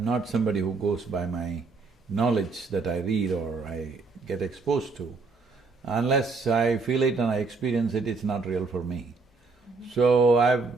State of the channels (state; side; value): quieter; left; 4.2 dB